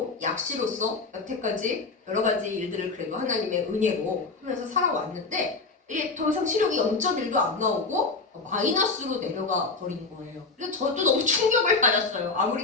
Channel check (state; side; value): quieter; right; 4.1 dB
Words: 약시로서 여태까지 여러 가지 일들을 그래도 하나님의 은혜로 하면서 살아왔는데 이게 더 이상 시력이 0.1도 안 나오고 마이너스로 내려가 버린 거예요. 그래서 저도 너무 충격을 받았어요. 아무리